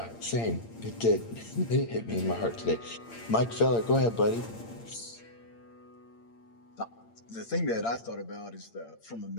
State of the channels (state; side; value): late; right; 8.7 ms